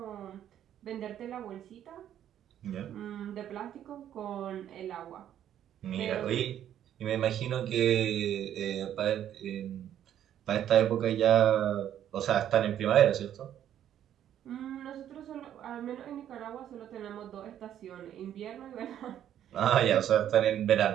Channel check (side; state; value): left; quieter; 10.6 dB